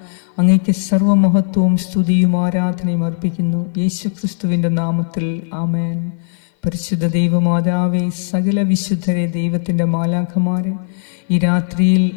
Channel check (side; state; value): right; silent; 56 dB below the other